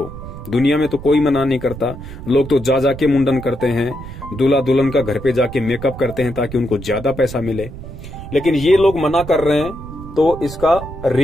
दुनिया में तो कोई मना नहीं करता, लोग तो जा जाके मुंडन करते हैं, दूल्हा दुल्हन का घर पे जाके मेकअप करते हैं ताकि उनको ज्यादा पैसा मिले, लेकिन ये लोग मना कर रहे हैं, तो इसका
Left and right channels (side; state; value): right; noise; rumble, 12 dB below the sound